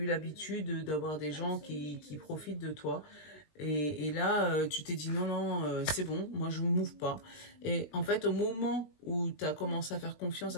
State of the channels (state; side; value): late; right; 20 ms